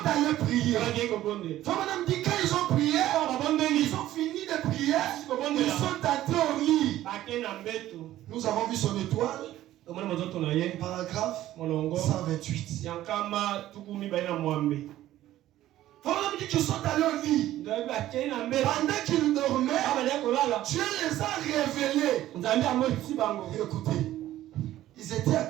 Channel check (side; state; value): left; quieter; 14.0 dB